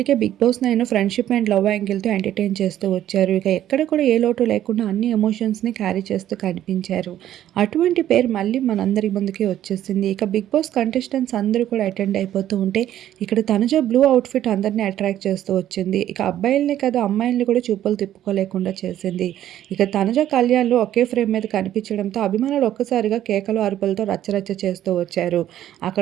Bigg Boss 9 friendship and love యాంగిల్తో ఎంటర్టైన్ చేస్తూ వచ్చారు. ఇక ఎక్కడ కూడా ఏ లోటు లేకుండా అన్ని ఎమోషన్స్ని క్యారీ చేస్తూ కనిపించారు. అటువంటి పేరు మళ్ళీ మనందరి ముందుకి వచ్చేసింది. ఇక బిగ్ బాస్ కంటెస్టెంట్స్ అందరూ కూడా అటెండ్ అయిపోతూ ఉంటే ఇక్కడ తనుజ బ్లూ అవుట్ఫిట్ అందరినీ అట్రాక్ట్ చేస్తూ వచ్చింది. ఇక అబ్బాయిల్ని కాదు అమ్మాయిల్ని కూడా చూపులు తిప్పుకోలేకుండా చేసింది. ఇక తనుజ కళ్యాణ్లు ఒకే ఫ్రేమ్ మీద కనిపించడంతో అభిమానులు ఒక్కసారిగా కేకలు అరుపులతో రచ్చరచ్చ చేస్తూ వచ్చారు.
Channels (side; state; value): left; quieter; 12.0 dB